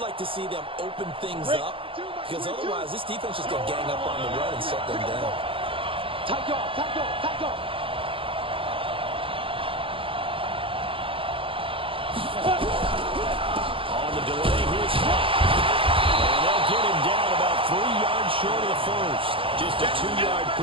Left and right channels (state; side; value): late; left; 0.26 ms